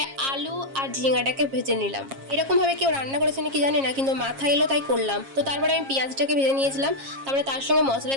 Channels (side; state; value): left; late; 7.4 ms